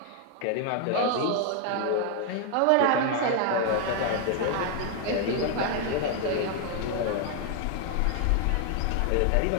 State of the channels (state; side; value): different; both; correlation 0.00